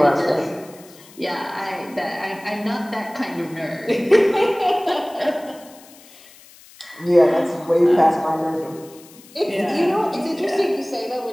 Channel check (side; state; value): left; noise; hiss, 23 dB below the sound